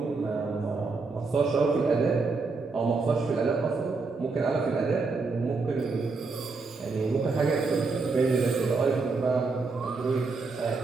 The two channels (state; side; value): quieter; left; 4.1 dB